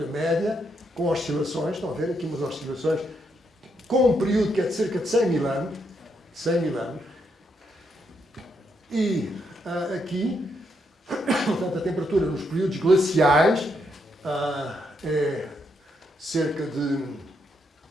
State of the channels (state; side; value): normal; both; correlation 0.78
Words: média, com oscilações, estão a ver aqui umas oscilações, com um período que é de cerca de 100 mil anos, e aqui, portanto, a temperatura nos períodos glaciais é cerca de